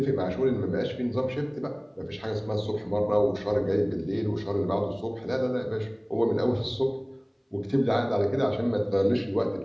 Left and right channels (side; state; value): both; identical; correlation 1.00